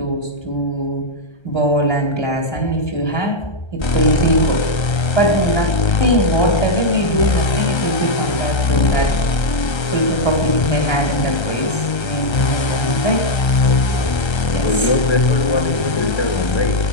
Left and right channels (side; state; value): right; late; 1.3 ms